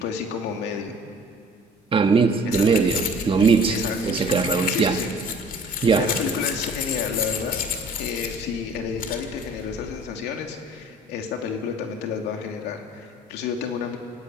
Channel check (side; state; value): both; normal; correlation 0.50